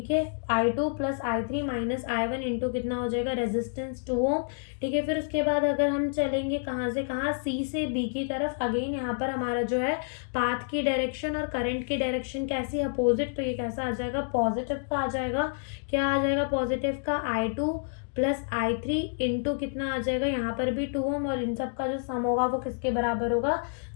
है, I2 plus I3 minus I1 into कितना हो जाएगा, रेजिस्टेंस 2 ओम, ठीक है। फिर उसके बाद अगर हम चलेंगे कहाँ से कहाँ, सी से बी की तरफ, अगेन यहाँ पर हमारा जो है पाथ की डायरेक्शन और करंट की डायरेक्शन कैसी है, अपोजिट। तो ये कैसा आ जाएगा, पॉजिटिव का आ जाएगा। क्या आ जाएगा पॉजिटिव का, I2 प्लस I3 इंटू कितना आ जाएगा, यहाँ पर भी 2 ओम, और इन सब का जो सम होगा वो किसके बराबर होगा,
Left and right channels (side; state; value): right; silent; digital silence